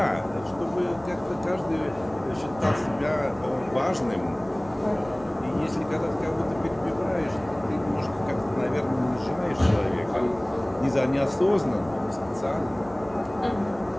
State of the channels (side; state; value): right; noise; rumble, 21 dB below the sound